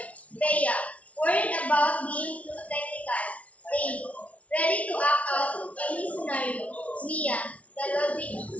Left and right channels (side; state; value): right; late; 0.066 ms